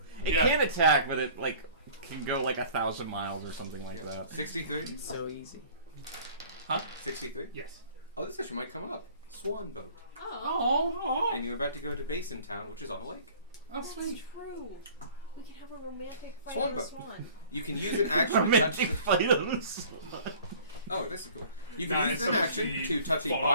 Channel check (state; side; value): inverted; both; correlation -0.49